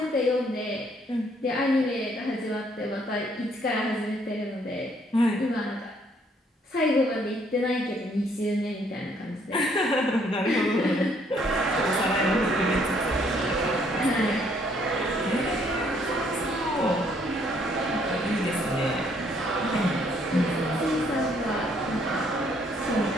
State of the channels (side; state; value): both; normal; correlation 0.66